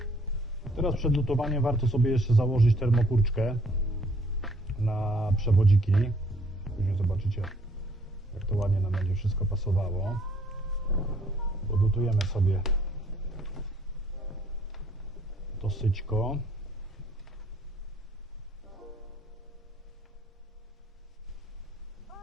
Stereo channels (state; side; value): normal; both; correlation 0.63